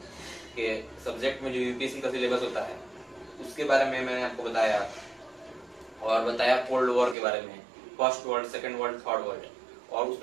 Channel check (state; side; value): drops out; left; at 7.2 s